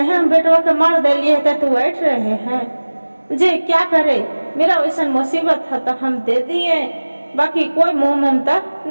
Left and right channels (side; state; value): both; inverted; correlation -1.00